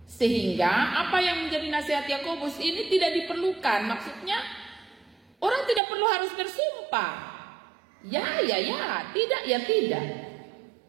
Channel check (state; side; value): drops out; left; at 5.8 s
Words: Sehingga apa yang menjadi nasihat Yakobus ini tidak diperlukan. Maksudnya orang tidak perlu harus bersumpah. Ya, tidak, ya tidak.